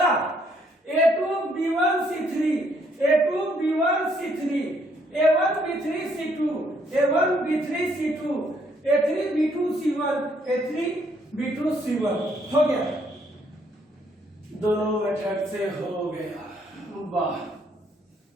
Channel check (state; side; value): normal; both; correlation 0.69